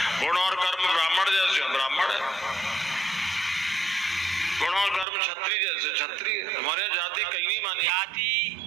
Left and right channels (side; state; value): left; drops out; at 5.1 s